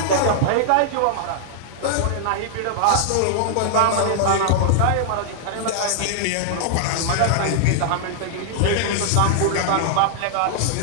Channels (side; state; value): both; different; correlation -0.01